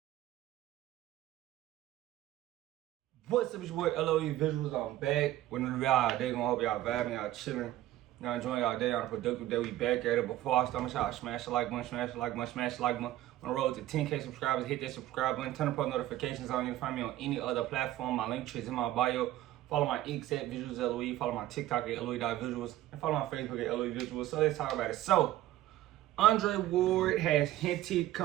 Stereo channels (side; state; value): left; quieter; 14.5 dB